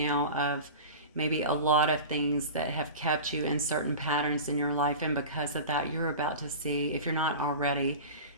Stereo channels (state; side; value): inverted; both; correlation -0.31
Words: of maybe a lot of things that have kept you in certain patterns in your life. And because of that, you're about to see, if you're not already,